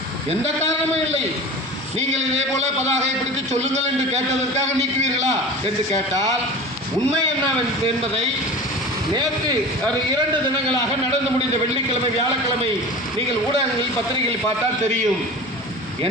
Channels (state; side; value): normal; both; correlation 0.35